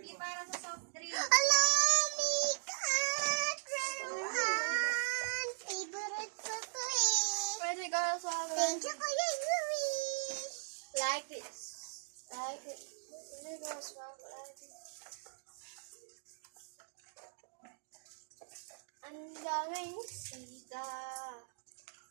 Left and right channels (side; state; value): left; silent; digital silence